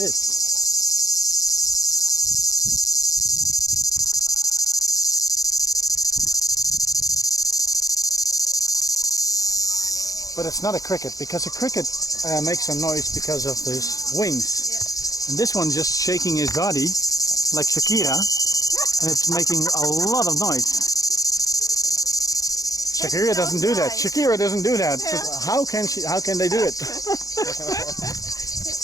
But it's not a cricket, because a cricket makes a noise because of his wings. Yeah. And this one's just shaking his body like Shakira, and it's making a lot of noise. Shakira doesn't do that. Shakira doesn't do that. Yeah. So how can they do it?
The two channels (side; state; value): right; late; 0.17 ms